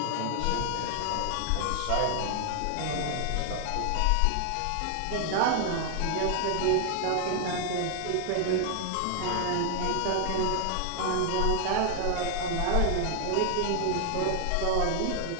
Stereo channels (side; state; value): both; different; correlation 0.00